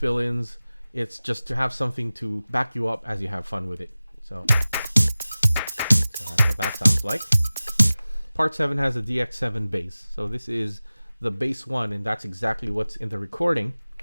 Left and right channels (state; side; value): inverted; both; correlation -0.97